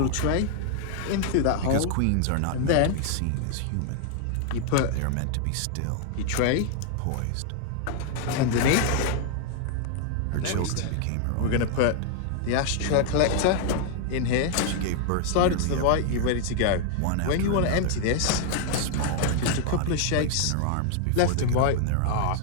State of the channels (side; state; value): both; different; correlation 0.00